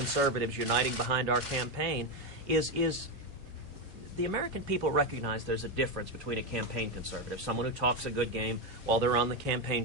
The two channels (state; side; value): normal; both; correlation 0.10